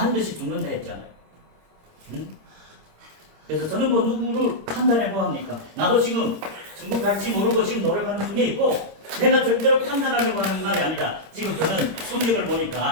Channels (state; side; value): late; left; 26 ms